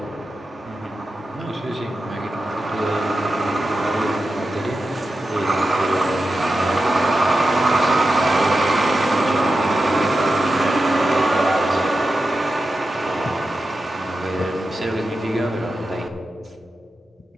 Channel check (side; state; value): both; normal; correlation 0.91